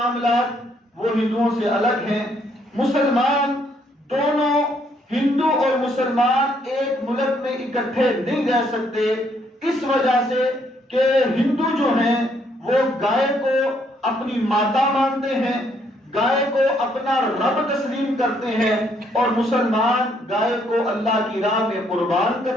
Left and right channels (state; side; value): normal; both; correlation 0.70